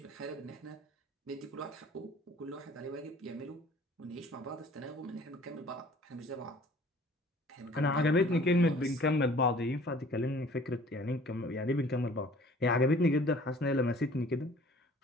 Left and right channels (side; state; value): both; normal; correlation 0.51